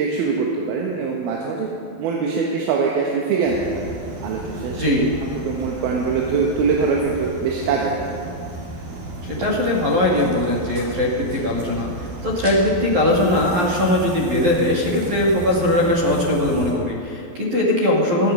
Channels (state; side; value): late; left; 11 ms